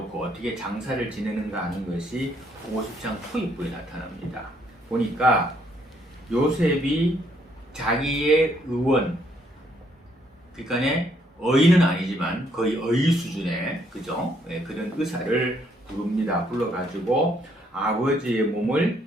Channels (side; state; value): both; normal; correlation 0.70